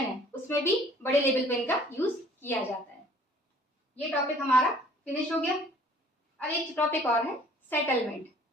उसमें भी बड़े लेवल पे इनका यूज किया जाता है। ये टॉपिक हमारा फिनिश हो गया। अब एक टॉपिक और है सेटलमेंट,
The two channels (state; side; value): normal; both; correlation 0.55